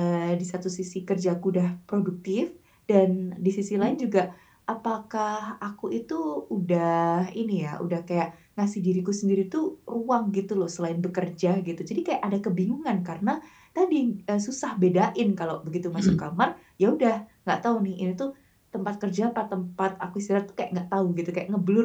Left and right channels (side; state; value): both; identical; correlation 1.00